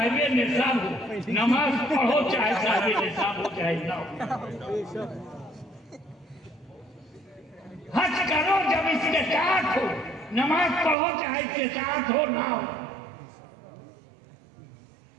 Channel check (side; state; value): left; drops out; at 11.0 s